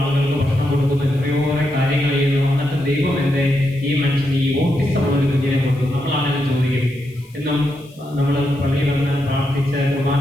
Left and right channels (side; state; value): left; noise; hiss, 28 dB below the sound